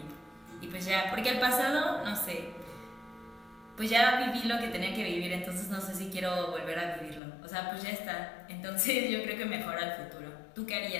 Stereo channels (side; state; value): right; drops out; at 7.2 s